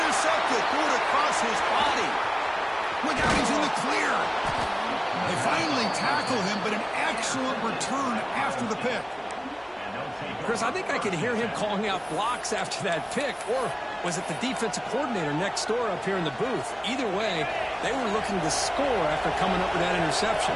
Threw it across his body. Look out, he's in the clear. They finally tackle him, but an excellent return after the pick. Chris, I think I could hear him calling out blocks after that pick, or was it the defensive coordinator next door up here in the booth? Either way, they were looking to score after coming up with that interception.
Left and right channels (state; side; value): identical; both; correlation 1.00